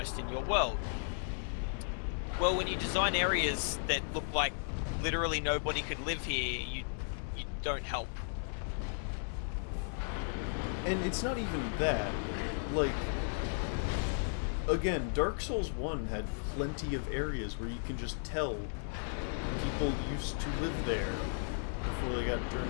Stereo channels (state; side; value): silent; right; digital silence